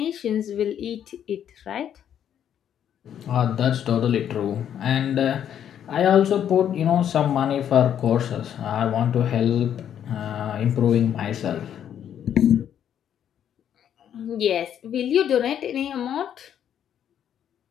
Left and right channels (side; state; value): right; quieter; 9.6 dB